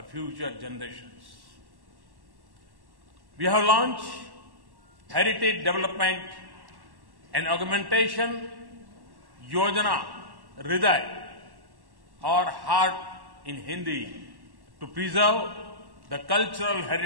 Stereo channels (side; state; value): left; late; 1.1 ms